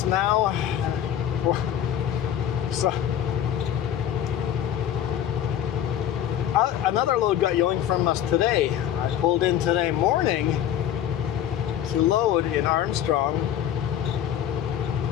now. So another load got yoinked from us today. I pulled in today morning to load in Armstrong,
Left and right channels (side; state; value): right; quieter; 10.4 dB